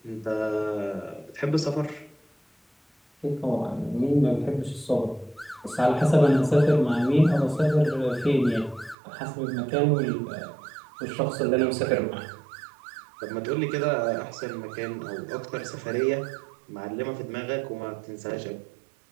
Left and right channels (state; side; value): drops out; left; at 9.0 s